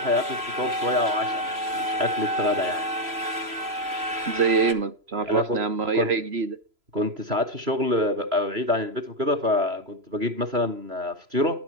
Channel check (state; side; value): late; left; 3.0 ms